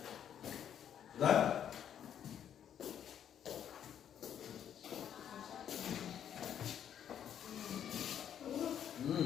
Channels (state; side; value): quieter; right; 9.4 dB